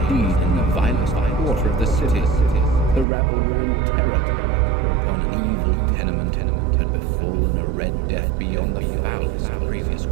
deed in the vilest quarter of the city. The rabble were in terror, whereupon an evil tenement had befallen a red death beyond the foulest previous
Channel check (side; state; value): left; drops out; at 3.1 s